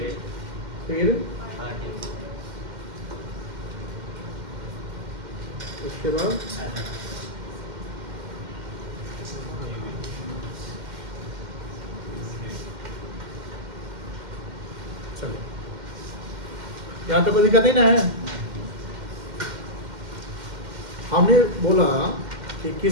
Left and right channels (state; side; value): late; left; 2.1 ms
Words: फिर उसके बाद चलो यहाँ तक कोई दिक्कत नहीं ना है। हमने बोला कि